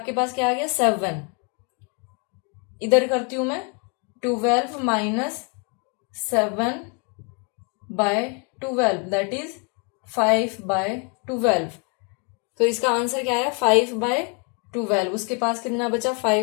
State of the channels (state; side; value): quieter; right; 35.4 dB